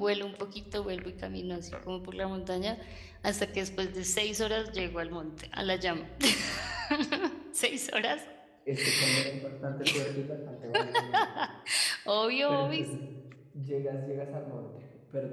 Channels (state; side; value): identical; both; correlation 1.00